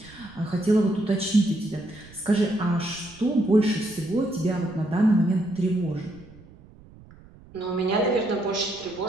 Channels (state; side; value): noise; right; rumble, 22 dB below the sound